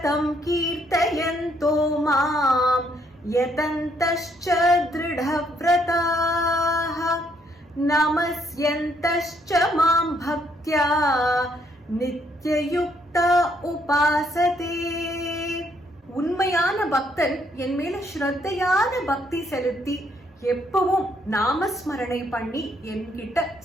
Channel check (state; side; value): normal; both; correlation 0.70